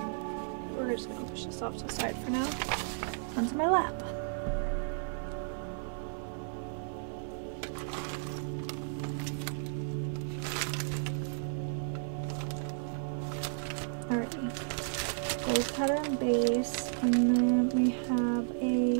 We're just gonna push this off to the side for now, onto my lap. Alrighty, gold patterned base, and then we have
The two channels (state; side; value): silent; left; digital silence